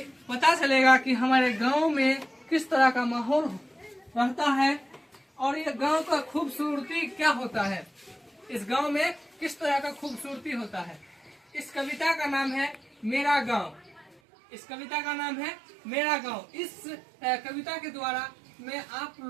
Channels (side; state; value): left; drops out; at 14.2 s